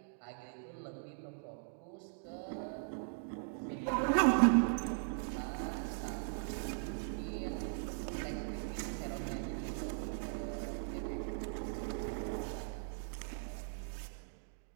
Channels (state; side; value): silent; left; digital silence